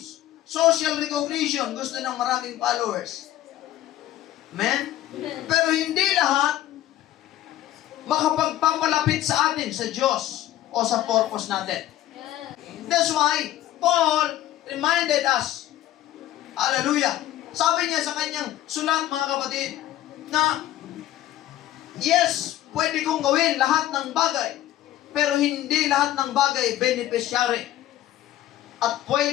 social recognition. Gusto ng maraming followers. Amen? Pero hindi lahat makapagpapalapit sa atin, sa Diyos, o sa purpose natin. That's why Paul reminded us, hallelujah, sabi niya sa kanyang sulat, mga kapatid, na yes, pwede kong gawin lahat ng bagay, pero hindi lahat ng bagay beneficiary at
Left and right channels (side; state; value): right; quieter; 13.5 dB